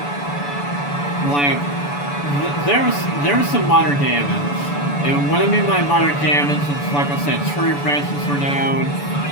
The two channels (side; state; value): right; late; 7.0 ms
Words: There was some minor damage, and what I mean by minor damage is, like I said, tree branches were down.